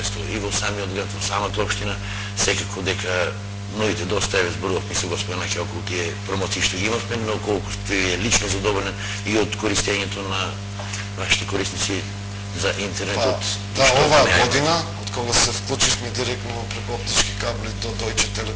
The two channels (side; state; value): both; identical; correlation 1.00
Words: и во самиот град, во самата општина, секако дека новите доста еве зборувавме со господин Наки околу тие промоции што ги имавме, но колку сте лично задоволен и од користењето на вашите корисници за интернетот. Да, оваа година, од кога се вклучивме директно преку оптички кабли до Deutsche